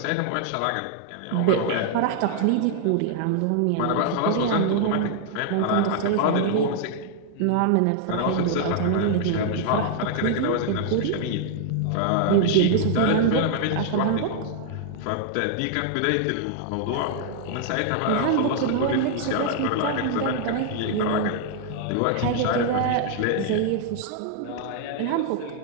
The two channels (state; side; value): different; both; correlation -0.01